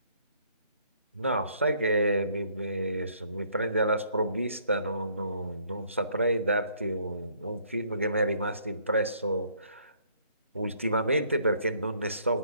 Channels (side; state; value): both; inverted; correlation -0.64